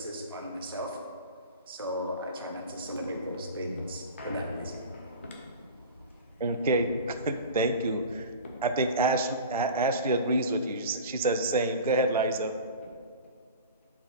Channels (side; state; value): both; inverted; correlation -0.35